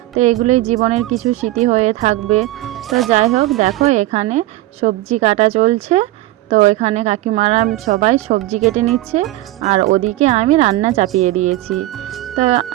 তো এগুলোই জীবনের কিছু স্মৃতি হয়ে থাকবে। তো যাই হোক, দেখো এখানে সবজি কাটা চলছে। তো এখানে কাকিমারা সবাই সবজি কেটে নিচ্ছে, আর ওদিকে আমি রান্না চাপিয়ে দিয়েছি। তো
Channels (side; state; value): left; quieter; 16.8 dB